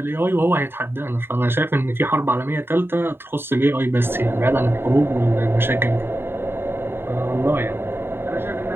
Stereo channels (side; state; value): left; late; 0.11 ms